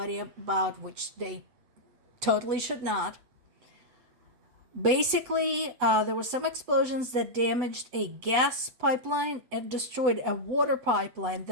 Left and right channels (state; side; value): late; left; 7.9 ms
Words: about, which they totally should not. Basically, there were some explosions that damaged a gas pipeline and destroyed a water pipeline